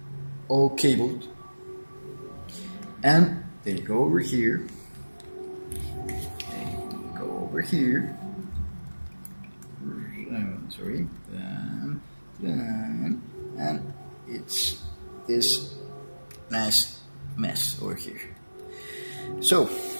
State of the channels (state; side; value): inverted; both; correlation -1.00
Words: all cabled, and they go over here. They go over here. Sorry, and it's this nice mess over here. So